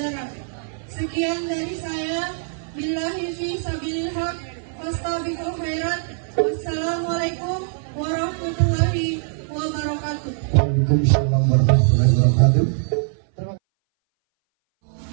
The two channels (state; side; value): silent; left; 60 dB below the other